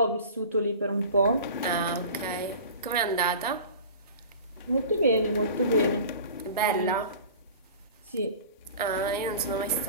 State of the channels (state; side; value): inverted; both; correlation -0.40